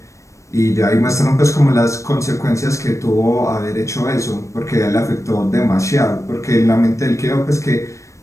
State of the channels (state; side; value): late; right; 0.15 ms